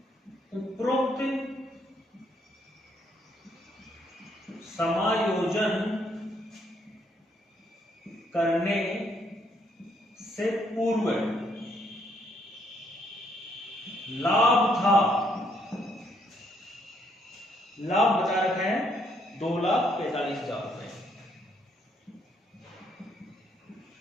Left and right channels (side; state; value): both; normal; correlation 0.71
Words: उपरोक्त समायोजन करने से पूर्व लाभ था, लाभ बता रखा है 2,45,000 रुपए।